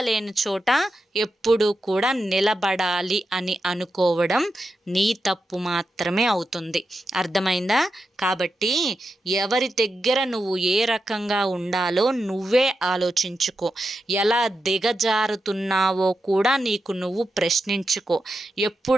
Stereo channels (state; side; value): normal; both; correlation 0.88